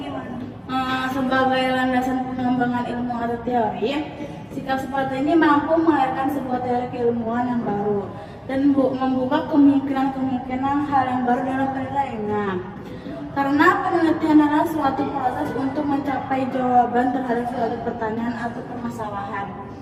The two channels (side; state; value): both; identical; correlation 1.00